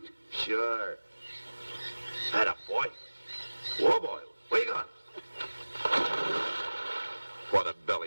Sure. Atta boy. Whoa, boy. Where you going? What a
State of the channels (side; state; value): both; inverted; correlation -1.00